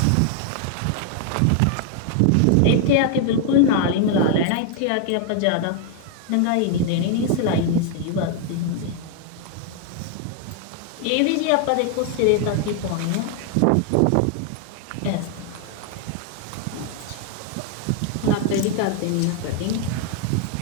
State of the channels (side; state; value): both; different; correlation 0.00